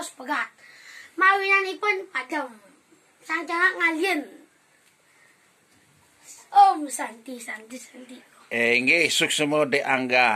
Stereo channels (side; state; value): both; identical; correlation 1.00